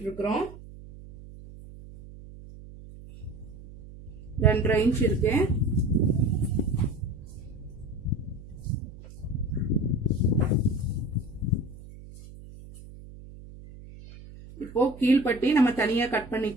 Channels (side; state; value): right; noise; hum, 17 dB below the sound